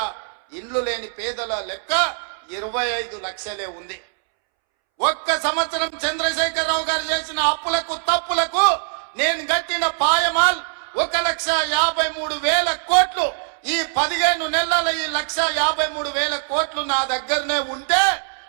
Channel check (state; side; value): silent; left; 64 dB below the other